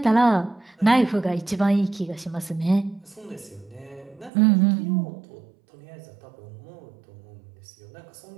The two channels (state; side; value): drops out; left; at 4.3 s